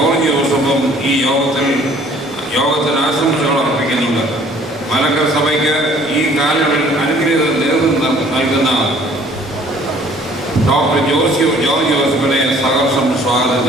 ജോസഫും ഈ യോഗത്തിന് ആശംസകൾ അർപ്പിക്കുന്നുണ്ട്. മലങ്കര സഭയ്ക്ക് ഈ കാലയളവിൽ അനുഗ്രഹീത നേതൃത്വം നൽകുന്ന ഡോക്ടർ ജോർജ് ജോസഫിനെ സഹർഷം സ്വാഗതം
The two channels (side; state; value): both; normal; correlation 0.56